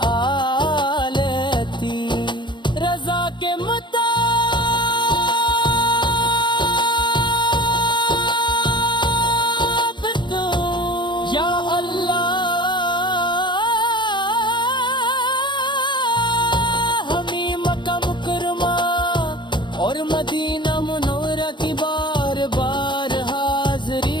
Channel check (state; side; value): late; right; 0.22 ms